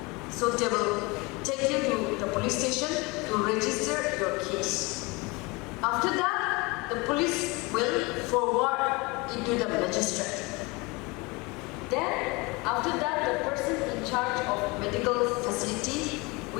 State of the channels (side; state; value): right; quieter; 25.7 dB